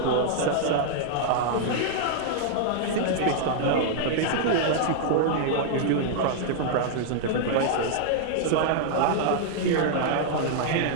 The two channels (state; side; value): different; both; correlation -0.01